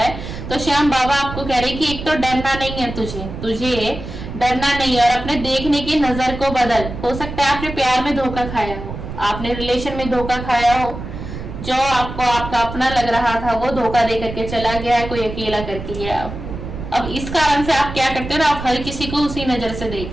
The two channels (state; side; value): noise; right; rumble, 9 dB below the sound